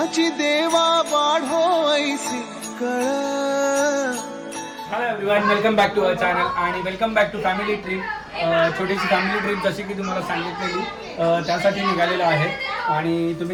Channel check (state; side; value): identical; both; correlation 1.00